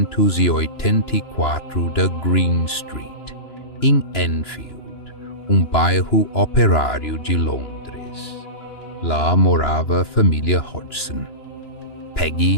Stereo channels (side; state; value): right; late; 2.9 ms